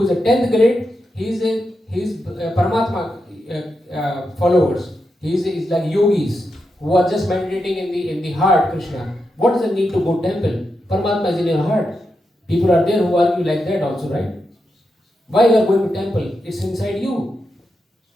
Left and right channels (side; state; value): both; normal; correlation 0.86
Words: is a 10th grade, he's Paramatma followers. He's like yogis who are just meditating in the heart, Krishna. What is the need to go temple? Paramatma is in your heart. People are there who argue like that also, right? Why you are going to temple? It's inside you.